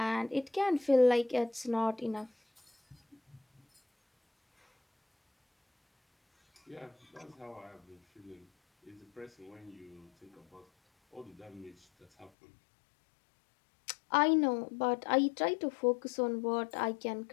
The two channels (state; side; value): drops out; right; at 12.3 s